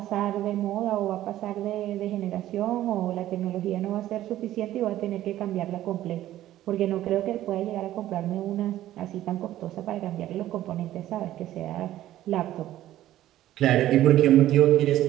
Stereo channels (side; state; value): left; quieter; 13.7 dB